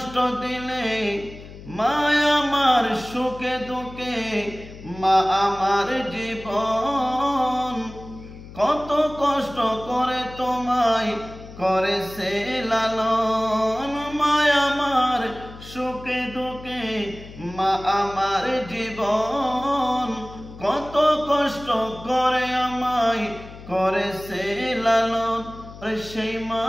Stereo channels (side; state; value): left; noise; hum, 16 dB below the sound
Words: দিলে মা আমার সুখে দুঃখে, মা আমার জীবন। কত কষ্ট করে তোমায় করেছে লালন, মা আমার সুখে দুঃখে, মা আমার জীবন। কত কষ্ট করে আমায় করেছে লালন, সেই